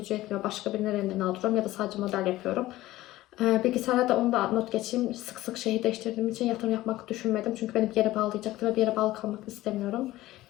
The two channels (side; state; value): right; quieter; 16.5 dB